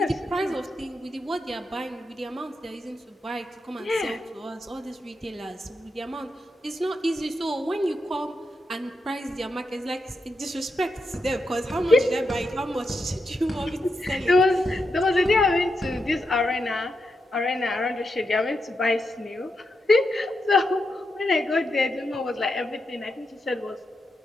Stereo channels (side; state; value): both; normal; correlation 0.85